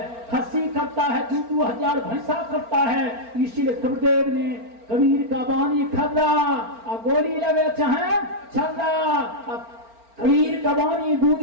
खस्सी करता है, 2,000 भैंसा करता है। इसीलिए कबीरदेव ने कबीर का बानी खर्रा और गोली लगे चाहे छर्रा। कबीर का बानी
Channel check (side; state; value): left; late; 4.4 ms